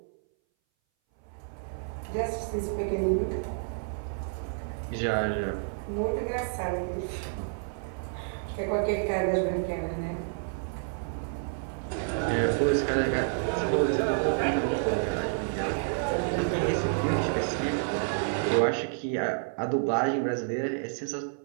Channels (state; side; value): silent; left; 58 dB below the other